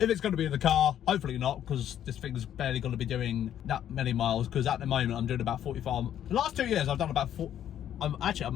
it's going to be in the car, hopefully not, because this thing's barely going to be doing that many miles, because at the moment I'm doing about 45. The last 2 years I've done about 4.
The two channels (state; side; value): quieter; right; 10.5 dB